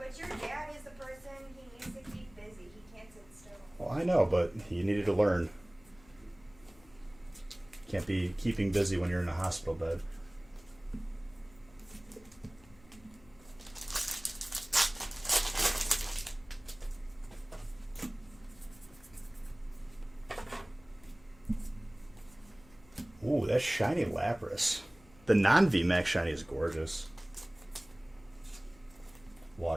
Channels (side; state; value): left; noise; hum, 26 dB below the sound